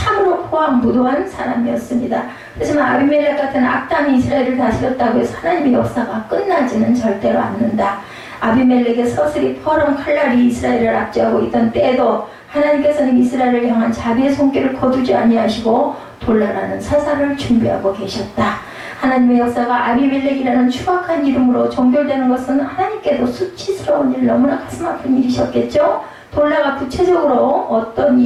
포악무도한 사람이었습니다. 하지만 아비멜렉 같은 악당이 이스라엘을 다스렸다고 해서 하나님의 역사가 끝나지는 절대로 않는다. 아비멜렉의 서슬이 퍼런 칼날이 이스라엘을 압제하고 있던 때에도 하나님께서는 이스라엘을 향한 자비의 손길을 거두지 아니하시고 돌라라는 사사를 준비하고 계셨다. 하나님의 역사가 아비멜렉이라는 추악한 이름으로 종결되는 것은 하나님께도 수치스러운 일, 너무나 가슴 아픈 일이셨겠죠. 돌라가 구체적으로 어떤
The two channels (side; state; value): both; identical; correlation 1.00